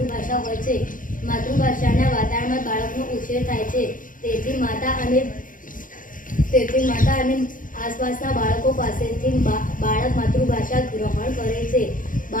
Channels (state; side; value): late; right; 0.39 ms